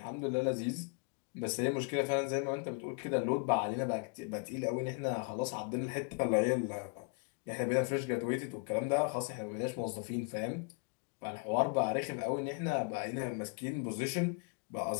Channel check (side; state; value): right; quieter; 35.2 dB